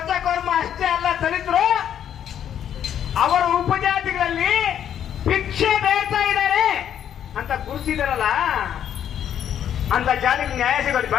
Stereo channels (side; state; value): right; quieter; 9.7 dB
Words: ಅಷ್ಟೇ ಅಲ್ಲ ದಲಿತರು ಅವರ ಉಪಜಾತಿಗಳಲ್ಲಿ ಭಿಕ್ಷೆ ಬೇಡ್ತಾ ಇದ್ದಾರೆ ಅಂತ ಗುರುಸಿದಾರಲ್ಲ, ಅಂತ ಜಾತಿಗೆ ನ್ಯಾಯ ಸಿಗೋದು